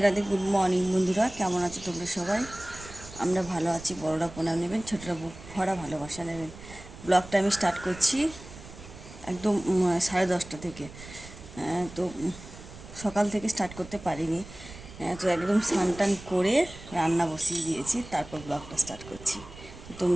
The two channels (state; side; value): noise; right; rumble, 16 dB below the sound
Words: রাধে, গুড মর্নিং বন্ধুরা। কেমন আছো তোমরা সবাই? আমরা ভালো আছি। বড়রা প্রণাম নেবেন, ছোটরা বুক ভরা ভালোবাসা নেবেন। ব্লগটা আমি স্টার্ট করছি একদম 10:30 থেকে। তো সকাল থেকে স্টার্ট করতে পারিনি। তো একদম স্নান টান করে রান্না বসিয়ে দিয়েছি, তারপর ব্লগটা স্টার্ট করছি।